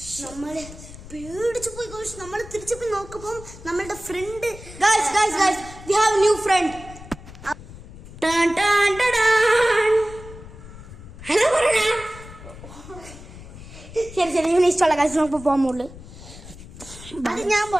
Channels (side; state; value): left; noise; rumble, 16 dB below the sound